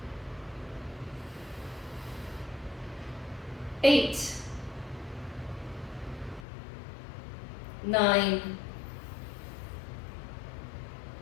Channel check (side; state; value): right; drops out; at 6.5 s